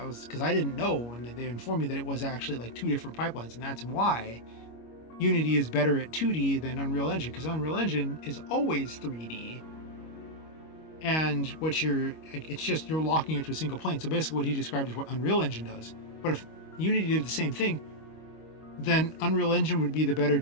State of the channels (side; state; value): right; late; 25 ms